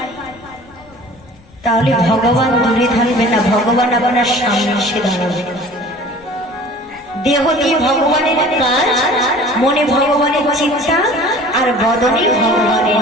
তাহলে ভগবান দূরে থাকবে না, ভগবান আপনার সামনে এসে দাঁড়াবে। দেহ দিয়ে ভগবানের কাজ, মনে ভগবানের চিন্তা, আর বদনে ভগবানের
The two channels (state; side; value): noise; left; rumble, 27 dB below the sound